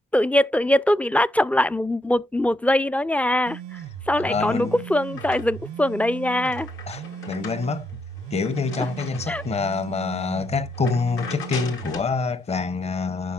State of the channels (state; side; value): normal; both; correlation 0.79